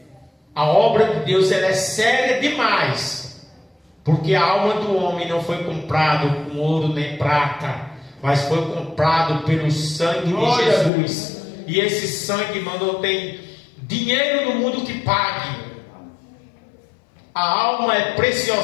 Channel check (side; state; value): right; drops out; at 10.9 s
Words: A obra de Deus, ela é séria demais. Porque a alma do homem não foi comprada com ouro nem prata, mas foi comprado pelo sangue de Jesus. E esse sangue, irmão, não tem dinheiro no mundo que pague. A alma é